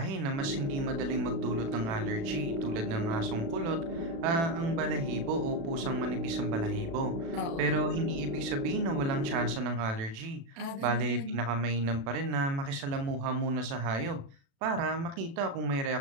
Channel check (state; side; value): late; left; 36 ms